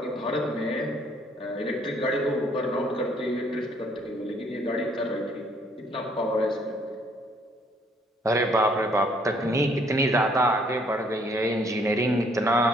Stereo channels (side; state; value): both; normal; correlation 0.64